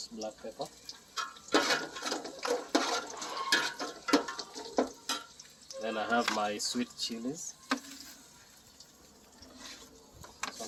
black pepper. Then I have my sweet chilies. So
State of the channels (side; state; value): both; identical; correlation 1.00